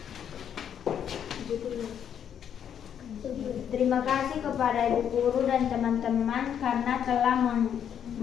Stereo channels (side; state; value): right; quieter; 8.8 dB